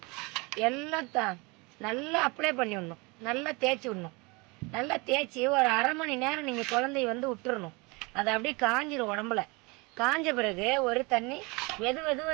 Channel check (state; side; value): quieter; left; 27.3 dB